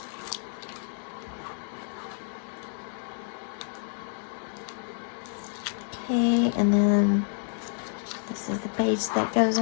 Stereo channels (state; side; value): silent; right; 58 dB below the other